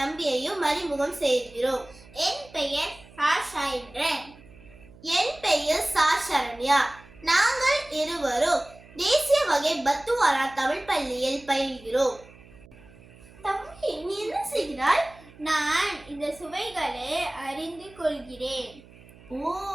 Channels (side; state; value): right; noise; hum, 23 dB below the sound